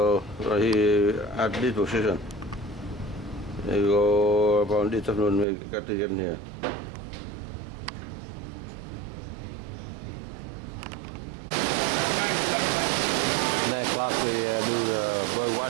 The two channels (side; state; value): left; drops out; at 5.5 s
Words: he at this position. We go about this afternoon. We got to get in here. Next class we do the bird